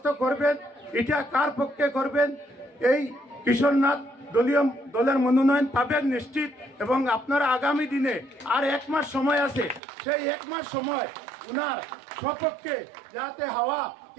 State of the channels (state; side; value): drops out; left; at 9.8 s